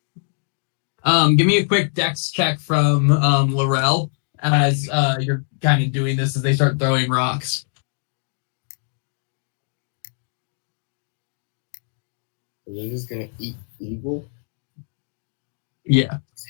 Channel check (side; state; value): right; silent; digital silence